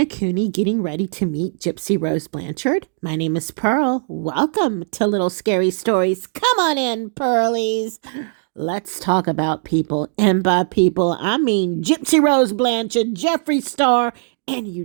getting ready to meet Gypsy Rose Blanchard? My name is Pearl. Welcome to Little Scary Stories. Come on in, Pearlies. Let's talk about people. And by people, I mean Gypsy Rose Blanchard, Jeffree Star, and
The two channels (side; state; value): left; silent; digital silence